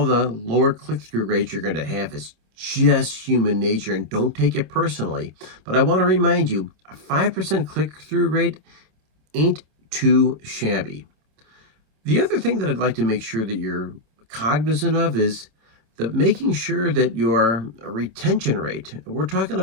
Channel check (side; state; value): left; late; 27 ms